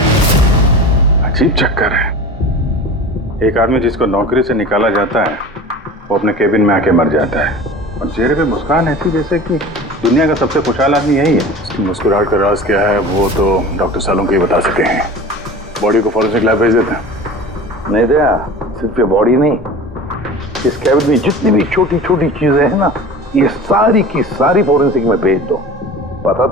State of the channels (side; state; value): both; normal; correlation 0.36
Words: अजीब चक्कर है। एक आदमी जिसको नौकरी से निकाला जाता है वो अपने केबिन में आके मर जाता है और चेहरे पे मुस्कान ऐसी जैसे कि दुनिया का सबसे खुशहाल आदमी यही है। उसकी मुस्कुराहट का राज क्या है वो तो डॉक्टर सालुंके ही बता सके हैं। बॉडी को फॉरेंसिक लैब भेज देते हैं। नहीं दया, सिर्फ ये बॉडी नहीं, इस केबिन में जितनी भी छोटी छोटी चीजें हैं ना, ये सारी की सारी फॉरेंसिक में भेज दो, पता